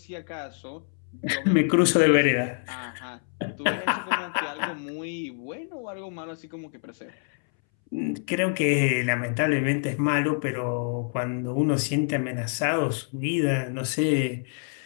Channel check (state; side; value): silent; right; 61 dB below the other